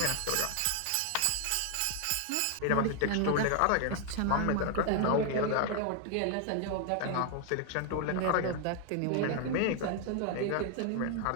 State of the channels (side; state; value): both; different; correlation 0.00